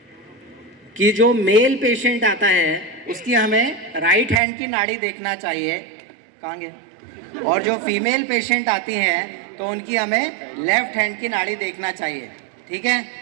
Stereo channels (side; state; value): left; drops out; at 4.4 s